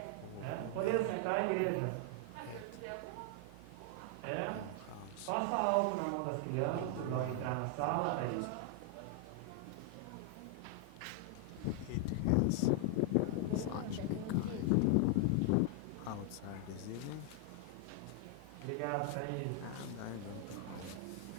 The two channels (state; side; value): different; both; correlation 0.00